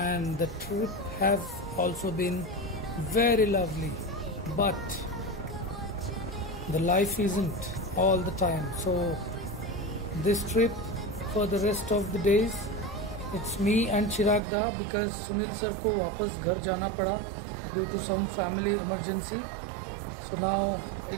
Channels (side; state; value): left; drops out; at 14.4 s